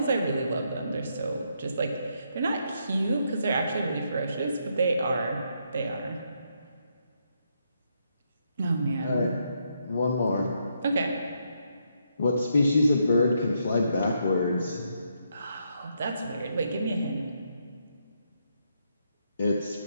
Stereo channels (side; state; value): both; inverted; correlation -0.78